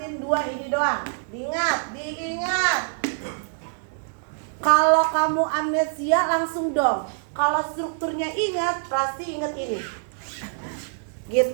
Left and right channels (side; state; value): left; silent; digital silence